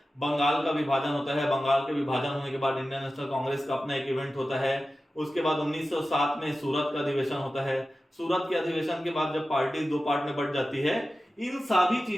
बंगाल का विभाजन होता है। बंगाल के विभाजन होने के बाद इंडियन नेशनल कांग्रेस का अपना एक इवेंट होता है। उसके बाद 1907 में सूरत का अधिवेशन होता है। सूरत के अधिवेशन के बाद जब पार्टी दो पार्ट में बढ़ जाती है, इन सभी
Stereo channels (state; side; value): normal; both; correlation 0.94